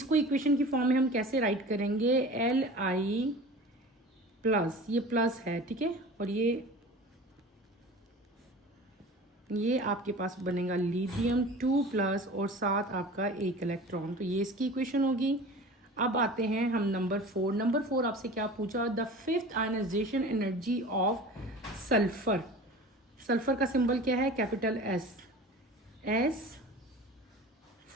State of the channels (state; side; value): normal; both; correlation 0.38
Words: इक्वेशन की फॉर्म में हम कैसे राइट करेंगे, Li प्लस, ये प्लस है, ठीक है, और ये आपके पास बनेगा लिथियम 2 प्लस और साथ आपका एक इलेक्ट्रॉन। तो ये इसकी इक्वेशन होगी। अब आते हैं हम नंबर 4। नंबर 4 आपसे क्या पूछा, the fifth ionization energy of sulphur. Sulphur का सिंबल क्या है, capital S